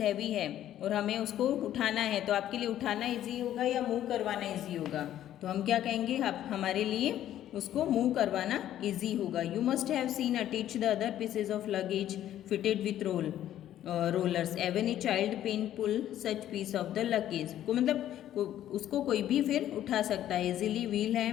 है और हमें उसको उठाना है तो आपके लिए उठाना इजी होगा या मूव करवाना इजी होगा, तो हम क्या कहेंगे, हमारे लिए उसको मूव करवाना इजी होगा। You must have seen attach the other pieces of luggage fitted with rollers even a child pen pull such piece of the luggage को, मतलब उसको कोई भी फिर उठा सकता है, इजीली व्हील है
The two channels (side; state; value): right; quieter; 11.9 dB